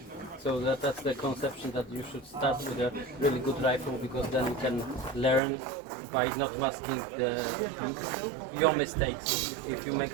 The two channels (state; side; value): drops out; left; at 5.4 s